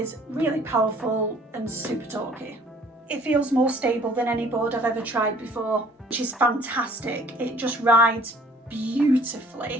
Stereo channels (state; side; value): normal; both; correlation 0.54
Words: really powerful and super torquey. It feels more stable than any board I've ever tried before, which is fantastic. It just rides